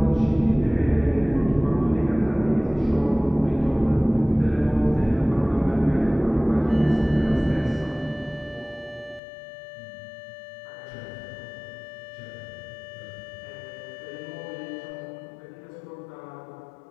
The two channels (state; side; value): drops out; right; at 9.2 s